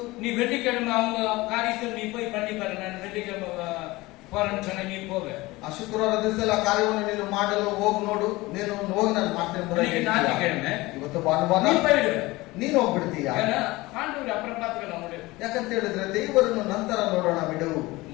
நீ வெள்ளிக்கிழமை அவங்க காரியத்தில் நீ போய் பண்ணி பாரு. நான் வெள்ளிக்கிழமை போறேன்னு சொன்ன, நீ போக. ಆ ಶುಕ್ರವಾರ ದಿವಸ ಆ ಕಾರ್ಯವನ್ನು ನೀನು ಮಾಡಲು ಹೋಗಿ ನೋಡು, ನೀನು ಹೋಗಿ ನಾನು ಮಾಡ್ತೇನೆ. ஞாயிற்றுக்கிழமை ಇವತ್ತು ಭಾನುವಾರ நீ போயிடுவ, ನೀನು ಹೋಗ್ಬಿಡ್ತೀಯ. ஆண்டவர் அப்புறம் பார்த்துக்கலாம் முடியும். ಯಾಕಂತ ಹೇಳಿದ್ರೆ ದೇವರನ್ನು ನಂತರ ನೋಡೋಣ ಬಿಡು.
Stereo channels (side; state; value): right; quieter; 20.7 dB